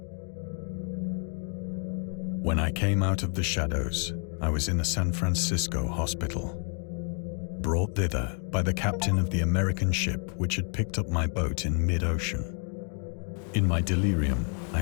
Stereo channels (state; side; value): quieter; right; 39.9 dB